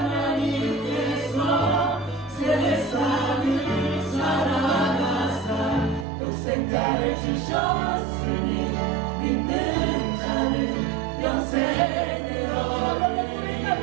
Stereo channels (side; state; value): left; drops out; at 6.1 s